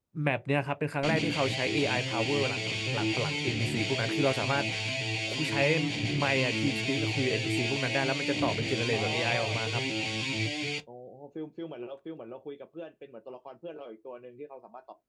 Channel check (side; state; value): both; identical; correlation 1.00